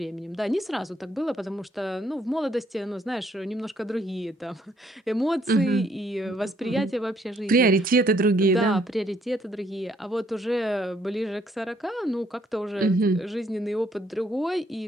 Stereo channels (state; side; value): normal; both; correlation 0.68